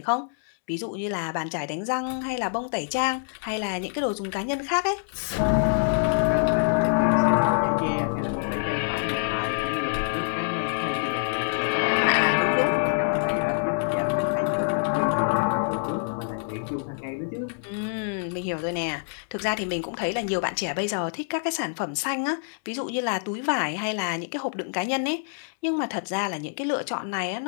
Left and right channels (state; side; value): silent; right; digital silence